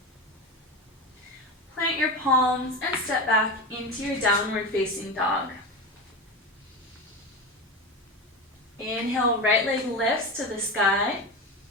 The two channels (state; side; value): normal; both; correlation 0.22